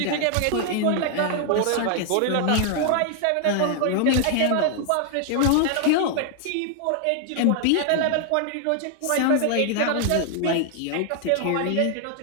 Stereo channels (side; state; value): both; different; correlation 0.00